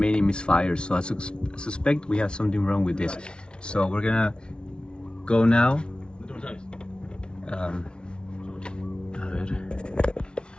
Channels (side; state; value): right; late; 0.056 ms